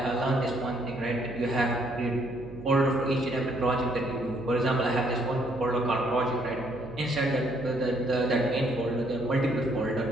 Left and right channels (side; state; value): right; noise; hum, 14 dB below the sound